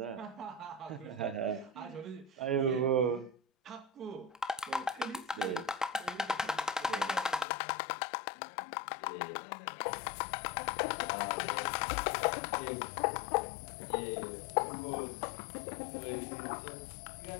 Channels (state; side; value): drops out; right; at 7.5 s